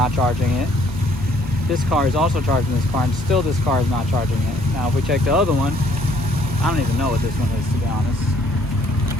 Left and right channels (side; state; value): both; normal; correlation 0.62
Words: charging it, this car is also charging this car, and still this car is not charging it. Now if we check the other one, I don't even know what this one is, to be honest.